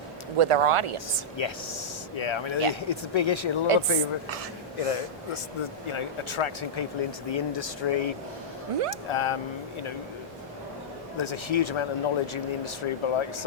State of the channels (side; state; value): both; normal; correlation -0.11